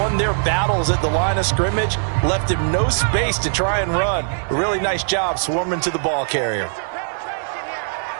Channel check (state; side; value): silent; left; digital silence